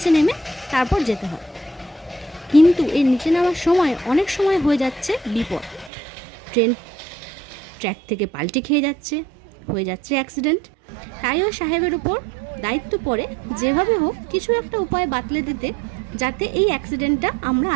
নেমে তারপর যেতে হয়। কিন্তু এই নিচে নামার সময় অনেক সময় হয়ে যাচ্ছে বিপদ, ট্রেন ট্র্যাক থেকে পাল্টি খেয়ে যাচ্ছে, হয়ে যাচ্ছে অ্যাক্সিডেন্ট। তাই ওই সাহেবের উপর দায়িত্ব পড়ে যেভাবে হোক কিছু একটা উপায় বাতলে দিতে, যাতে এই অ্যাক্সিডেন্টটা আমরা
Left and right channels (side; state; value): left; drops out; at 5.9 s